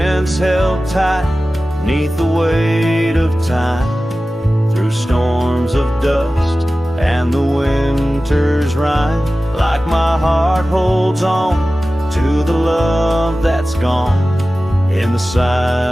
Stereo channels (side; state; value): both; normal; correlation 0.96